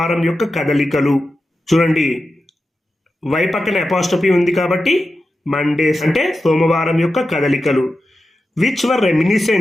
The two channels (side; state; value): both; normal; correlation 0.91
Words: యొక్క కదలికలు. చూడండి, why పక్కన apostrophe ఉంది కాబట్టి Mondays అంటే సోమవారం యొక్క కదలికలు. Which were